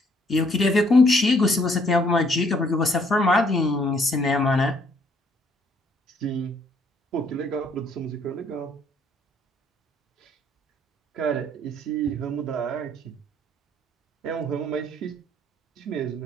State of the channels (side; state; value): both; normal; correlation 0.65